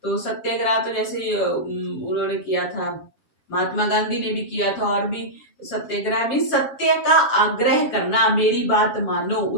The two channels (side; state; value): right; late; 7.3 ms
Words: तो सत्याग्रह तो जैसे उन्होंने किया था, महात्मा गांधी ने भी किया था, और भी सत्याग्रह में सत्य का आग्रह करना, मेरी बात मानो,